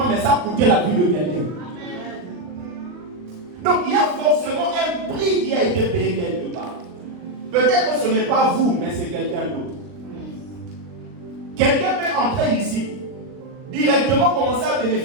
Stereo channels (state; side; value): late; left; 39 ms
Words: mais ça coûtait la vie de quelqu'un. Donc il y a forcément un prix qui a été payé quelque part. Peut-être que ce n'est pas vous, mais c'est quelqu'un d'autre. Quelqu'un peut entrer ici, directement commencer à